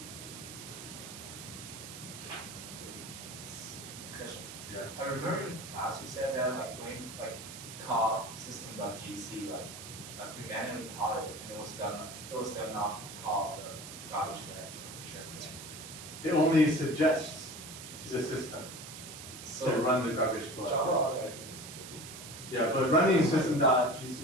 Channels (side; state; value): right; noise; hiss, 12 dB below the sound